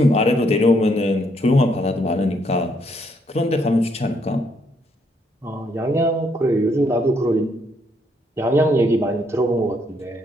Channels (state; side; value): normal; both; correlation 0.72